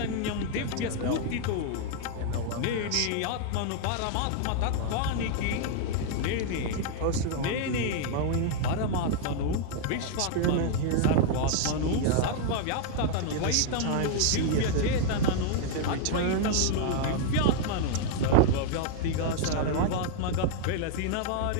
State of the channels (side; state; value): both; different; correlation 0.00